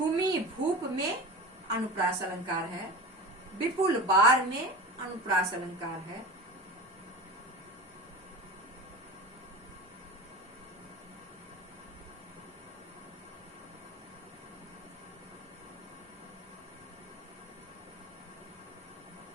भूप में अनुप्रास अलंकार है। विपुल बार में अनुप्रास अलंकार है।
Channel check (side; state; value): both; normal; correlation 0.31